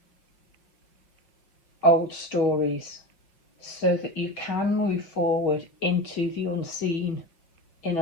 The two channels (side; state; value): right; late; 5.8 ms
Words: old stories so that you can move forward into the unseen in